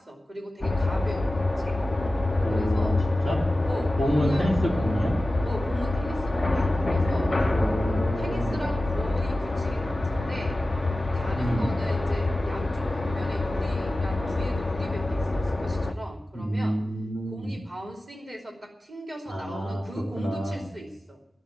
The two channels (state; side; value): normal; both; correlation 0.95